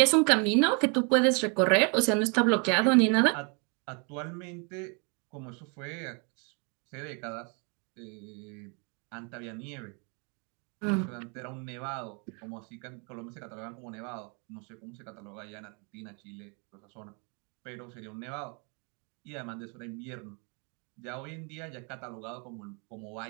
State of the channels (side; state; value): left; quieter; 35.5 dB